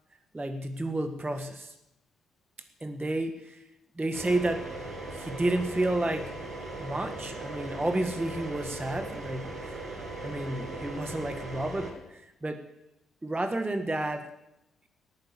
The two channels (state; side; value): normal; both; correlation 0.89